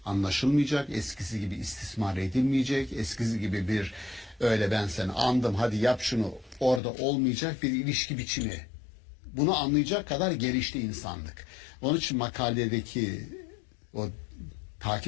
anlaşılmayacak, eskisi gibi istismar edilmeyecek, eskisi gibi bir öyle ben seni andım hadi yap şunu orada olmayacak bir ilişki biçimi. Bunu anlayacak kadar gelişti insanlık. Onun için makaledeki o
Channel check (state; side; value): drops out; right; at 6.8 s